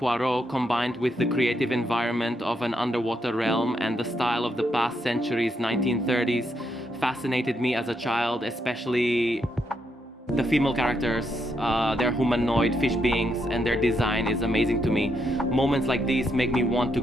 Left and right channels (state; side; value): normal; both; correlation 0.79